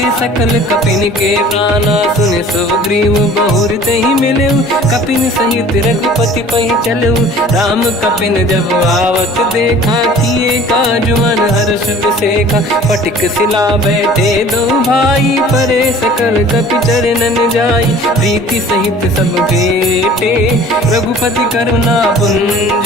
सकल कपिन के प्राणा, सुने सुग्रीव बहुर ते ही मिले, कपिन सहित रघुपति पहि चलऊ, राम कपिन जब आवत देखा, किए काज मन हर्ष बिसेखा, पटिक सिला बैठे दो भाई, परे सकल कपि चरणन जाई, प्रीति सहित सब भेटे, रघुपति करुणा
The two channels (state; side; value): normal; both; correlation 0.48